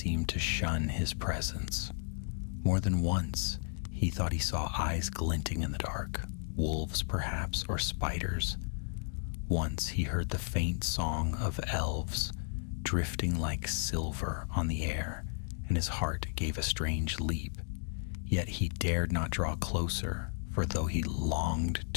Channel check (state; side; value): silent; right; 55 dB below the other